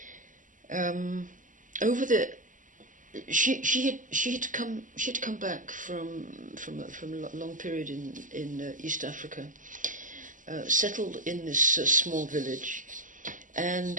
She had come back from a long period in East Africa, settled in this small village,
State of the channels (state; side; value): late; left; 0.38 ms